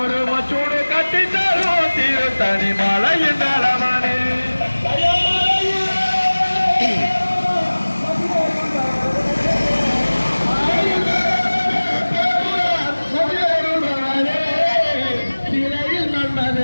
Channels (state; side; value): inverted; both; correlation -1.00